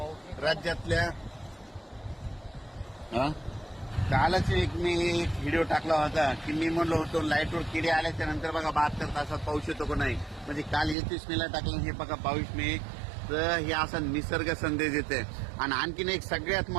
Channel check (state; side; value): drops out; left; at 11.0 s